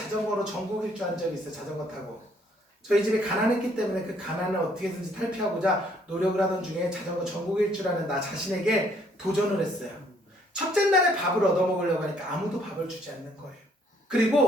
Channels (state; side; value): normal; both; correlation 0.65